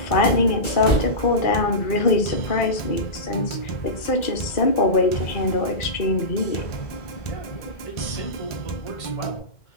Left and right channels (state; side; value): late; right; 2.4 ms